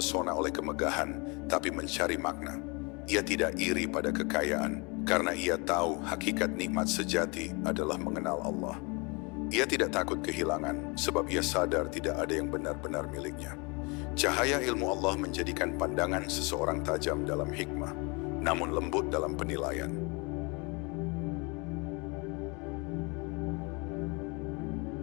oleh kemegahan, tapi mencari makna. Ia tidak iri pada kekayaan, karena ia tahu hakikat nikmat sejati adalah mengenal Allah. Ia tidak takut kehilangan, sebab ia sadar tidak ada yang benar-benar miliknya. Cahaya ilmu Allah menjadikan pandangan seseorang tajam dalam hikmah, namun lembut dalam penilaian.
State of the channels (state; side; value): quieter; right; 29.6 dB